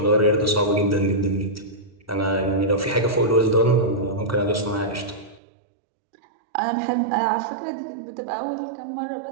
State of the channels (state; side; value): drops out; left; at 5.4 s